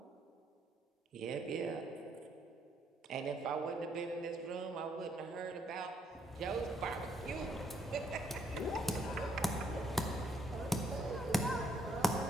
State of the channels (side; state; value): both; normal; correlation 0.71